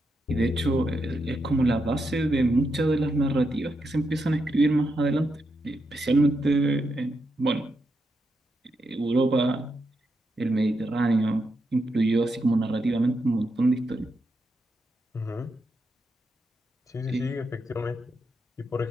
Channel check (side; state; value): both; normal; correlation 0.83